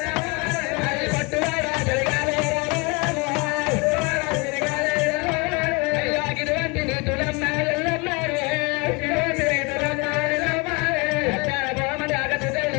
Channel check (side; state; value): right; quieter; 28.3 dB